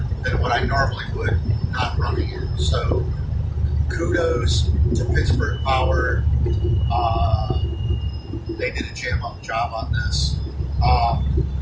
than what I normally would not running it. So kudos to Pittsburgh Power. They did a jam-up job on this.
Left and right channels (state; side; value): identical; both; correlation 1.00